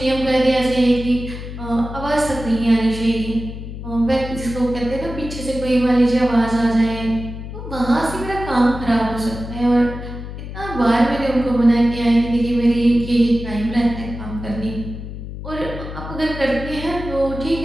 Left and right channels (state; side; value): noise; left; hum, 9 dB below the sound